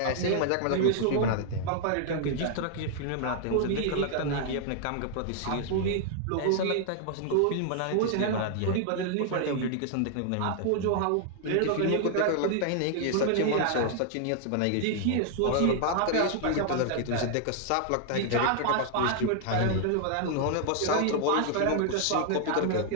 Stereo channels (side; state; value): both; different; correlation 0.00